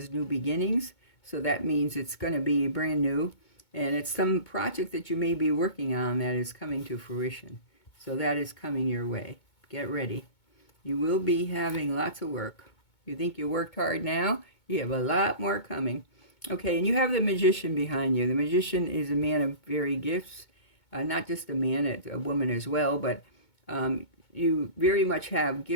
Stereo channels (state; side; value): late; right; 2.2 ms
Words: new beginnings, so that means it's going to be brand new. And it's some project that you may be working on that is coming to fruition. So that is coming your way. Get ready. You will be having lots of work. You think you worked hard now? You have a lot more coming. Okay, and you have the Magician behind you. The Magician is a man of varied gifts. Not just a man, it's a woman as well, but you very much have